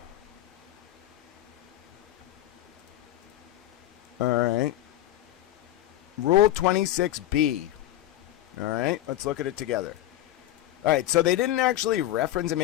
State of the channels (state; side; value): quieter; right; 13.9 dB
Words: right. Rule 26B. All right, let's look at it together. All right, so they didn't actually reference it.